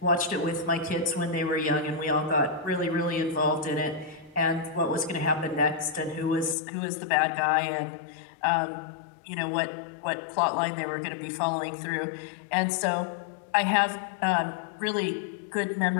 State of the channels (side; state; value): right; drops out; at 6.6 s